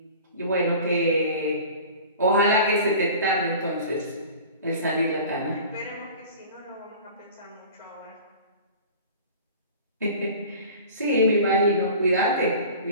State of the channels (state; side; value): inverted; both; correlation -0.40